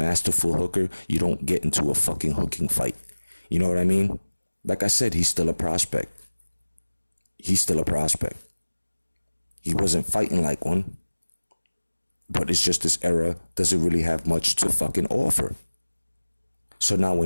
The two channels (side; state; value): both; inverted; correlation -1.00